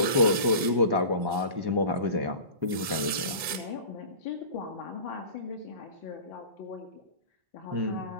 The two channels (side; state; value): left; late; 2.2 ms